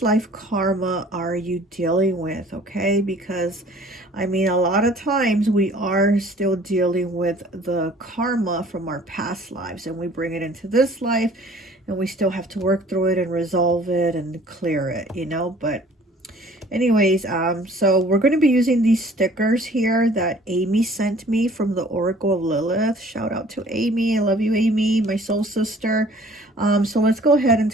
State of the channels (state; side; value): normal; both; correlation 0.52